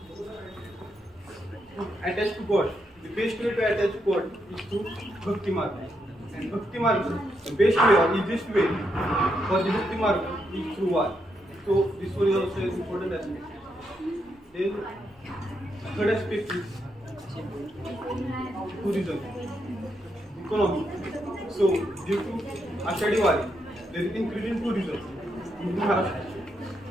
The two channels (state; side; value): normal; both; correlation 0.80